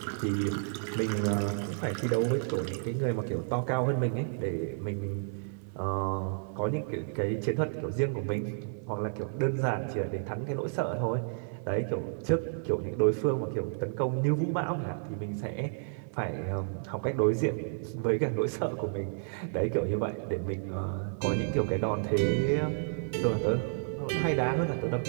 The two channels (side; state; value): left; silent; digital silence